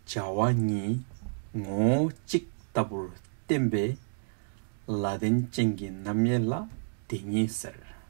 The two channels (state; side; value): silent; left; digital silence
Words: Jawa Ni Ngo Chik Tabur Tembe Ladin Chingi Namyela Tingi Ser.